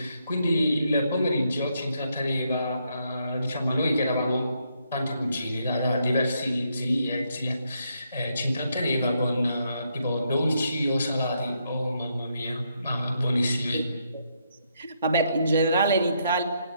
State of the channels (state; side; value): inverted; both; correlation -0.77